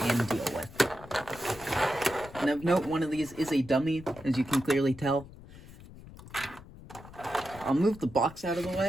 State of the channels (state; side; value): noise; left; rumble, 18 dB below the sound